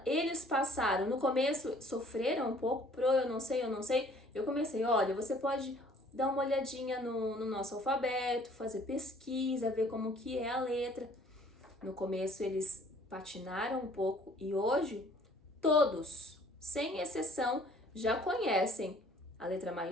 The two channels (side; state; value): both; normal; correlation 0.56